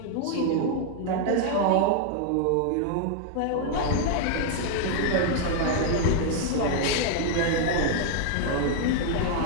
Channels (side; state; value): both; different; correlation 0.00